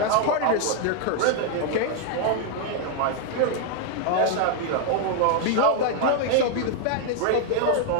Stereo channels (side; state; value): both; different; correlation 0.00